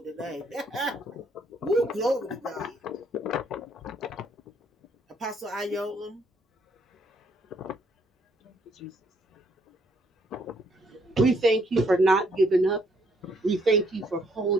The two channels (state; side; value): normal; both; correlation 0.68